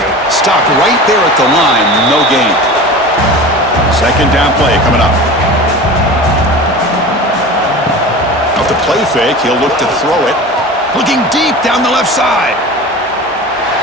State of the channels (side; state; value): both; normal; correlation 0.34